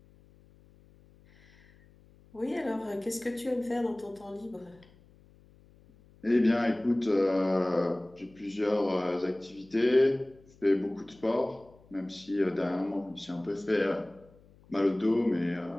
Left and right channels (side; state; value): left; noise; hum, 27 dB below the sound